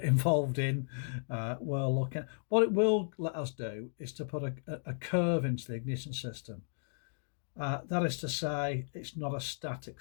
involved in. We're looking. What it will let us do is to put a curve into the ignition system. That is to say, it's not a static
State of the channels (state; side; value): silent; right; digital silence